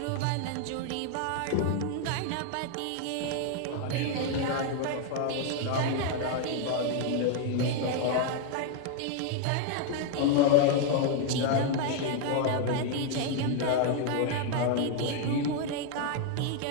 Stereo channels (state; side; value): different; both; correlation 0.00